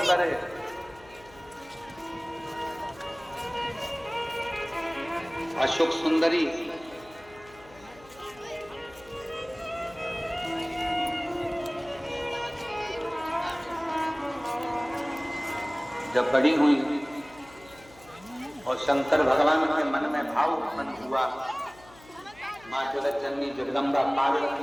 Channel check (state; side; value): noise; left; hum, 23 dB below the sound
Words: है। अशोक सुंदरी जब बड़ी हुई और शंकर भगवान के मन में भाव उत्पन्न हुआ, मां जगत जननी जगदम्बा पार्वती